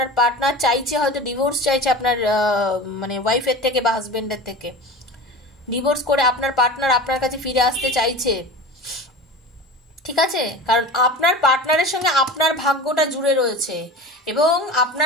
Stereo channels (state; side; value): normal; both; correlation 0.32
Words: পার্টনার চাইছে, হয়তো ডিভোর্স চাইছে আপনার মানে ওয়াইফের থেকে বা হাজবেন্ডের থেকে। ডিভোর্স করে আপনার পার্টনার আপনার কাছে ফিরে আসতে চাইছে, ঠিক আছে? কারণ আপনার পার্টনারের সঙ্গে আপনার ভাগ্যটা জুড়ে রয়েছে, এবং